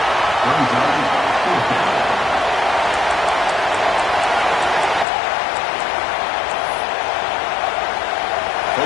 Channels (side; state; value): right; drops out; at 5.1 s